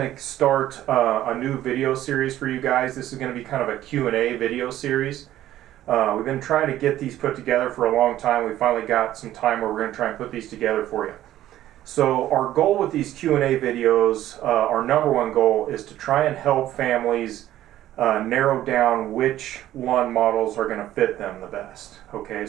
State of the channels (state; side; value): quieter; left; 13.3 dB